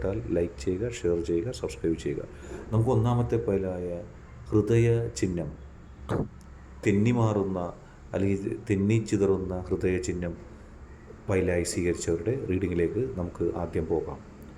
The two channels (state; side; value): identical; both; correlation 1.00